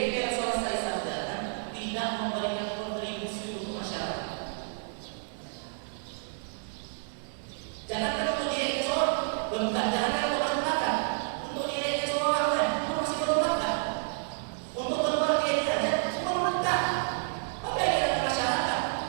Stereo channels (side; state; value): left; silent; digital silence